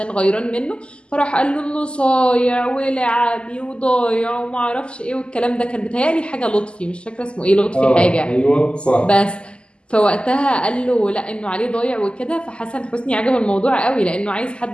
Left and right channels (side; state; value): right; late; 0.051 ms